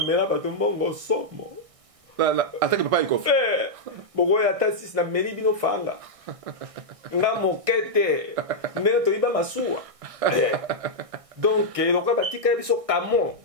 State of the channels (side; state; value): left; late; 1.6 ms